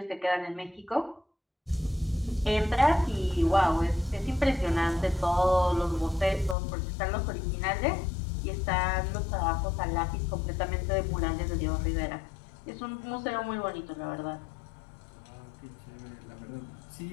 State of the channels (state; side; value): drops out; right; at 6.6 s